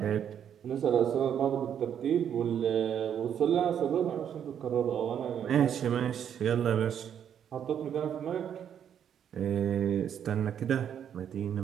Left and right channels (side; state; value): left; quieter; 8.9 dB